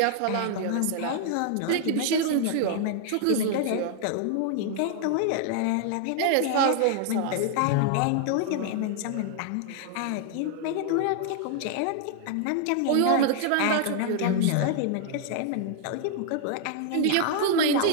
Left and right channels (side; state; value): both; different; correlation 0.00